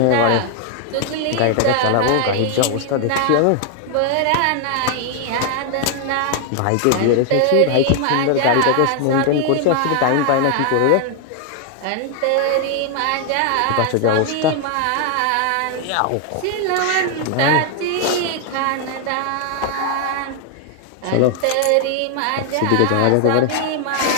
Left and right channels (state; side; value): different; both; correlation 0.00